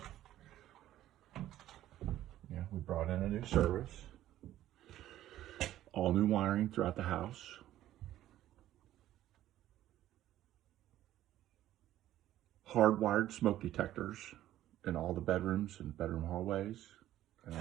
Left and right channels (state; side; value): quieter; left; 13.4 dB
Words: we brought in a new service, all new wiring throughout the house. Hardwired smoke detectors in all the bedrooms and bedroom hallways and